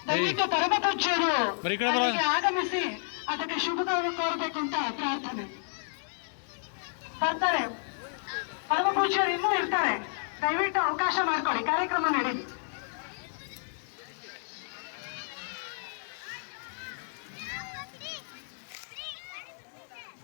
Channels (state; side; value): silent; right; digital silence